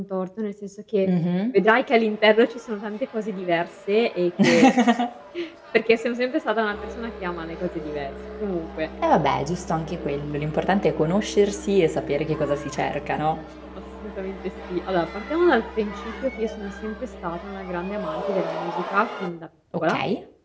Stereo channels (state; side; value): identical; both; correlation 1.00